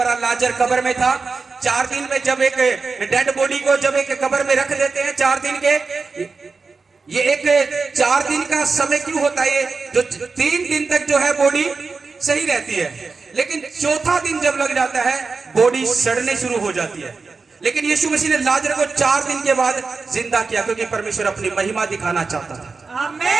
लाजर कब्र में था, 4 दिन में जब एक डेड बॉडी को जब एक कब्र में रख देते हैं 4 दिन के, ये एक 4 दिन का समय क्यों होता है, ये जो 3 दिन तक जो है बॉडी सही रहती है, लेकिन चौथा दिन जब लग जाता है बॉडी सड़ने शुरू हो जाती है। लेकिन यीशु मसीह ने लाजर को 4 दिन के बाद जिंदा किया, क्योंकि परमेश्वर अपनी महिमा दिखाना चाहता था।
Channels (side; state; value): left; quieter; 4.4 dB